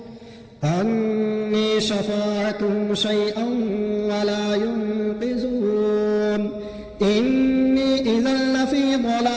عني شفاعتهم شيئا ولا ينقذون إني إذا لفي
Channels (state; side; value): identical; both; correlation 1.00